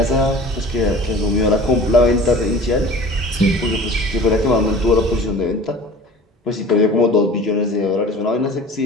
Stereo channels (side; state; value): both; normal; correlation 0.43